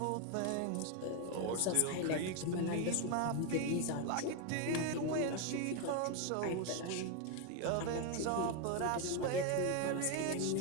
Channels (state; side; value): different; both; correlation 0.01